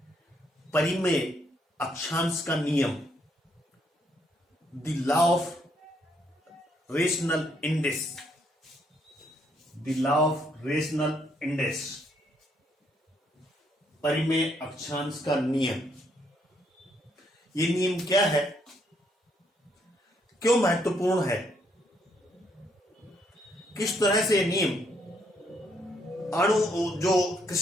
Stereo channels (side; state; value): both; normal; correlation 0.72